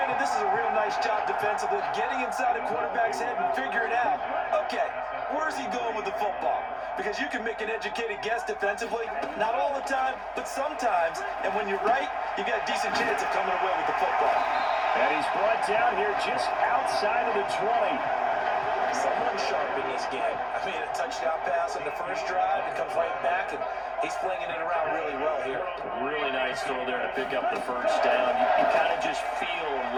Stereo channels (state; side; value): identical; both; correlation 1.00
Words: this is a real nice job defensively, getting inside a quarterback's head and figuring out, okay, where's he going with the football? Because you can make an educated guess defensively, not all the time, but sometimes. And when you're right, you got a decent chance of coming away with the football. And he's brought down here just outside of the 20. Someone sharp in this game. I mean, a touchdown pass on the first drive, and comes right back, and he's flinging it around really well here. Really nice throw there to pick up the first down. You kind of just feel